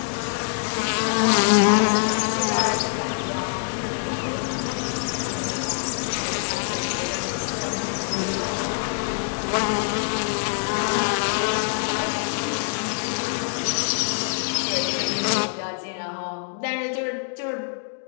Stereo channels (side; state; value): right; silent; digital silence